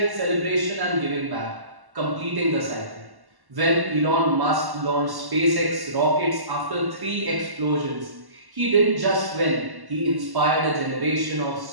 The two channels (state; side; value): late; left; 1.1 ms